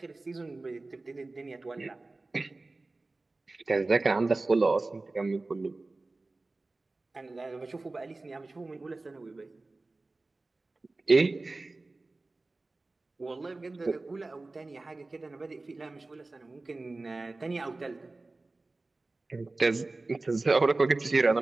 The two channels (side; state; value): left; quieter; 3.3 dB